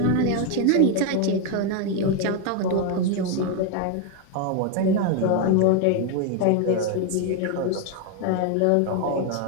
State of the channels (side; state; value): both; different; correlation 0.01